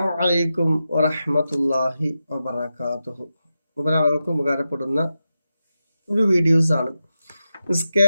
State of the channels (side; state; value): both; inverted; correlation -0.90